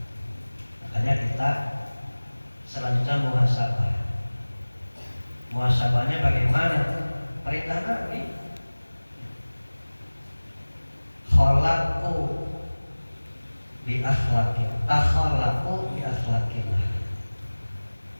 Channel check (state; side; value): inverted; both; correlation -1.00